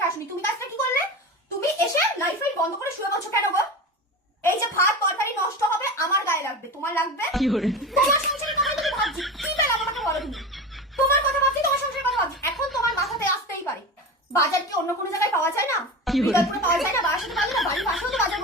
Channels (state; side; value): normal; both; correlation 0.27